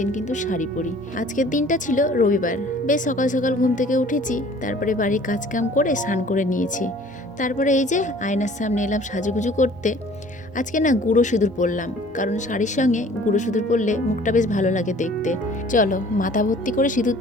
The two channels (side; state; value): both; normal; correlation 0.51